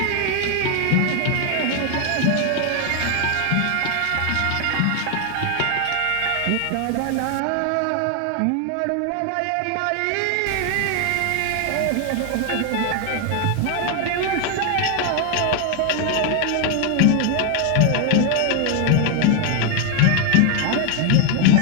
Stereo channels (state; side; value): different; both; correlation 0.01